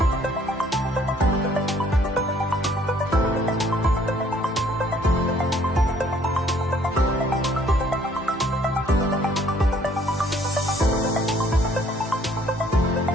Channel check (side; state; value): both; normal; correlation 0.61